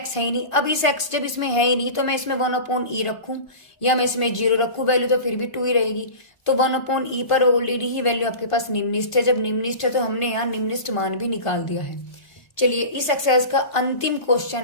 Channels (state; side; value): late; right; 1.5 ms